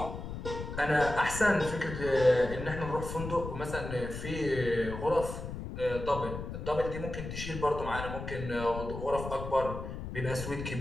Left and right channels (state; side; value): noise; left; rumble, 7 dB below the sound